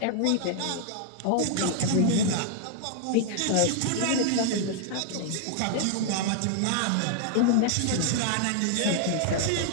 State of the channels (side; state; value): both; different; correlation 0.00